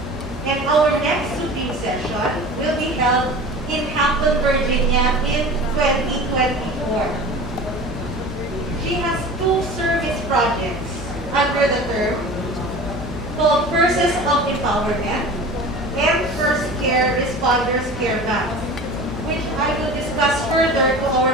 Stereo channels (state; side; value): normal; both; correlation 0.37